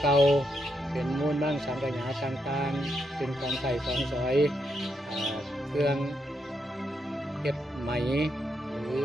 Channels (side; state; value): both; normal; correlation 0.81